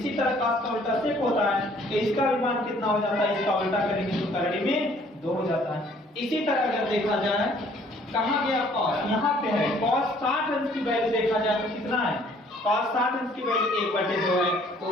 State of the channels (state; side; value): normal; both; correlation 0.59